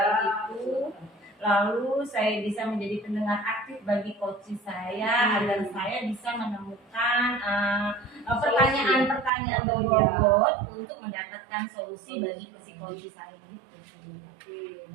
itu. Lalu saya bisa menjadi pendengar aktif bagi coach saya agar saya bisa menemukan pertanyaan-pertanyaan berbobot untuk mendapatkan solusi bagi si coach saya gitu. Oke,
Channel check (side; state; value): left; drops out; at 9.3 s